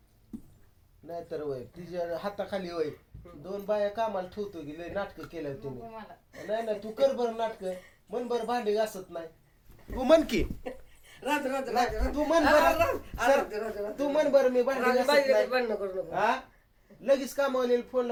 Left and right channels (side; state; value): both; identical; correlation 1.00